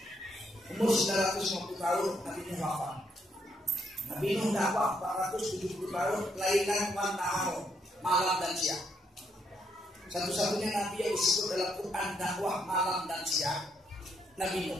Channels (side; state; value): both; normal; correlation 0.74